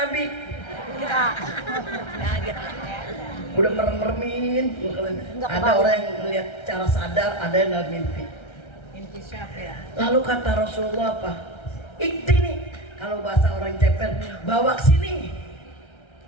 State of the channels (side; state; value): right; late; 1.3 ms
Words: Udah merem-meremin. Ada orang yang melihat cara sadar, ada yang dalam mimpi. Lalu kata Rasulullah apa? Ikti nih. Kalau bahasa orang ceper, bawa ke sini.